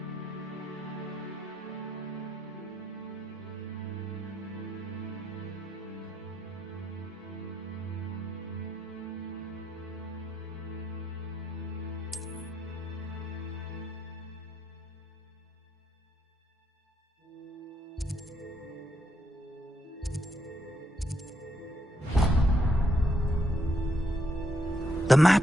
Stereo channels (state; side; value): normal; both; correlation 0.77